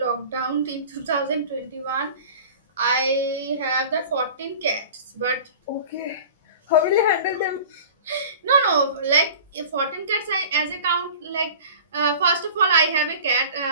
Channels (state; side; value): inverted; both; correlation -0.40